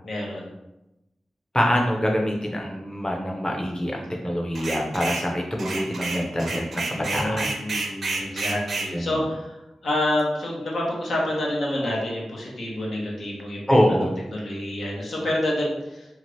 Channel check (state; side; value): normal; both; correlation 0.91